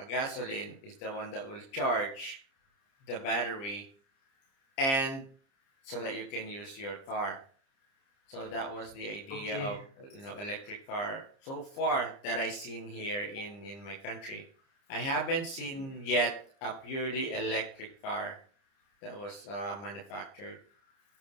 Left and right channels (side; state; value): right; late; 30 ms